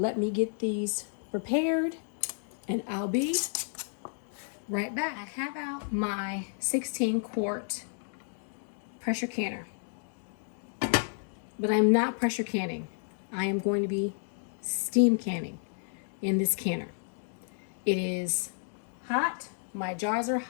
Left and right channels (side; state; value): right; silent; digital silence